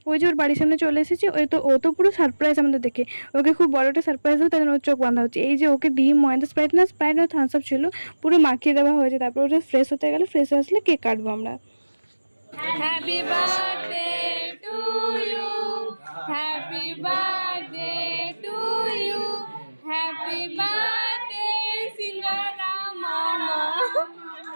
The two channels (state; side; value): inverted; both; correlation -1.00